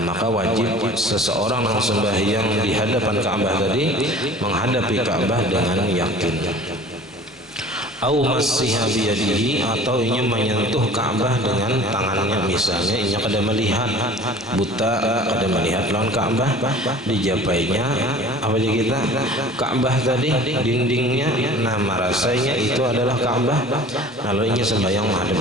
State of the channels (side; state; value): both; normal; correlation 0.45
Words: maka wajib seseorang yang sembahyang di hadapan Ka'bah tadi menghadapi Ka'bah dengan yakin. Au massiha biyadihi, atau inya menyentuh Ka'bah dengan tangannya, misalnya inya kada melihat buta, kada melihat lawan Ka'bah, dijapainya apa aja kita Ka'bah tadi dindingnya, nah merasanya itu adalah Ka'bah, lalu inya sembahyang menghadap